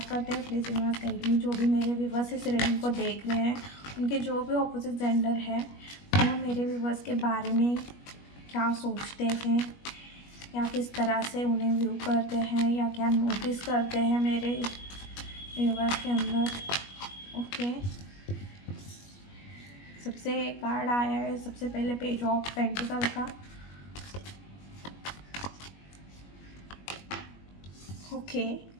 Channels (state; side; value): late; right; 21 ms